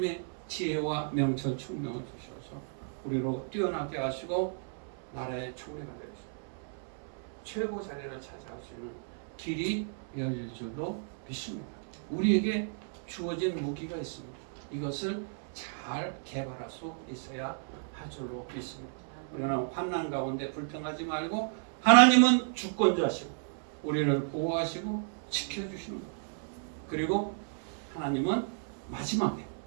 지혜와 명철 총명을 주셔서 우리로 뛰어나게 하시고 나라의 총리가 되어서 최고 자리를 차지할 수 있는 길이 열릴 줄로 믿습니다. 우리에게 주어진 무기가 있습니다. 이것을 잘 개발할 수 있어야 할 줄로 믿습니다. 우리는 환난 가운데 불평하지 말고 하나님은 주권자시고 우리를 보호하시고 지켜주시는 것. 그리고 하나님은 마지막에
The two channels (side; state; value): left; silent; 56 dB below the other